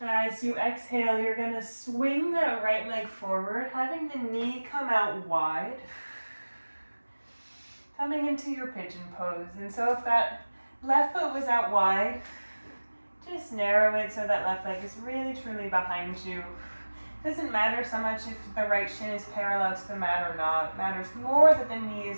As you exhale, you're going to swing that right leg forward, having the knee come out wide. Coming into your pigeon pose. And so if that left foot was out wide, just narrow it so that left leg is really truly behind you. Doesn't matter so much if the right shin is parallel to the mat or not. It matters more that the knee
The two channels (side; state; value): both; inverted; correlation -1.00